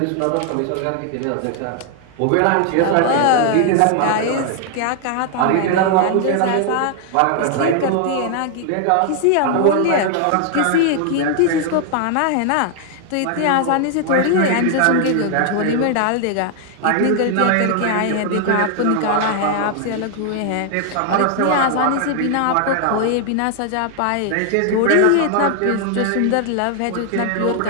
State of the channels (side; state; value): both; different; correlation 0.00